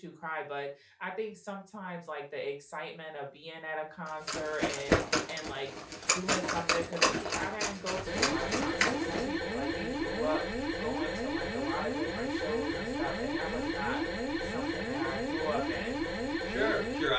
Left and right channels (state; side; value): identical; both; correlation 1.00